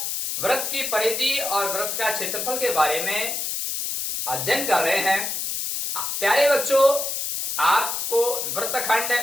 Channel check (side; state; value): left; noise; hiss, 3 dB below the sound